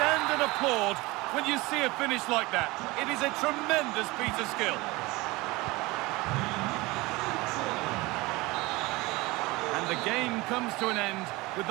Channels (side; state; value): left; quieter; 22.2 dB